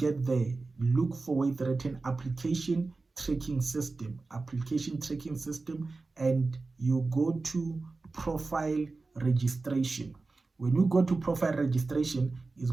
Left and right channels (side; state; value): left; quieter; 3.7 dB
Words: there, look for it written application tracking system, and you go to profile registration. When you go to profile registration, it's